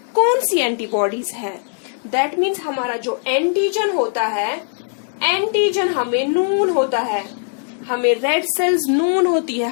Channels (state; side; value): silent; right; digital silence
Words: कौन सी एंटीबॉडीज है। दैट मीन्स हमारा जो एंटीजन होता है, एंटीजन हमें नून होता है, हमें रेड सेल्स नून होती है,